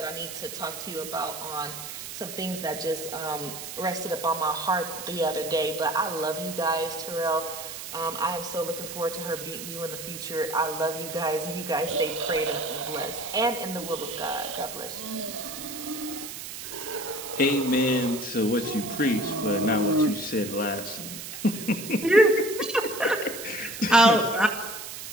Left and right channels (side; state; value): right; noise; hiss, 9 dB below the sound